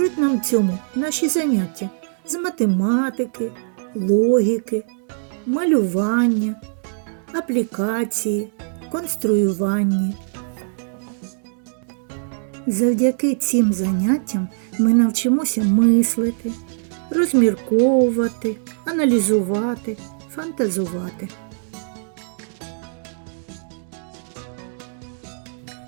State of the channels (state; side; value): silent; left; digital silence